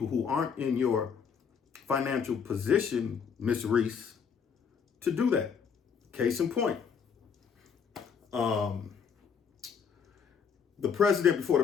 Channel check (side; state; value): right; quieter; 6.6 dB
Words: who aren't in your financial position, Miss Reese, to do that. Case in point. The president before the